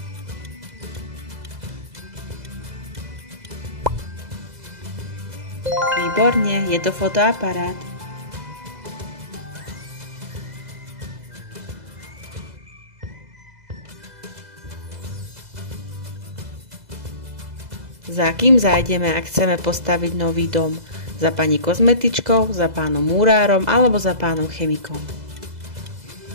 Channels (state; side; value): late; left; 2.0 ms